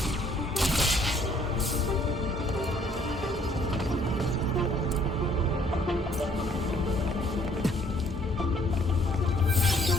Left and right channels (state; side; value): normal; both; correlation 0.63